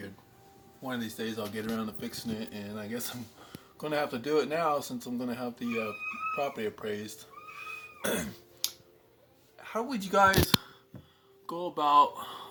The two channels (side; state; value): both; identical; correlation 1.00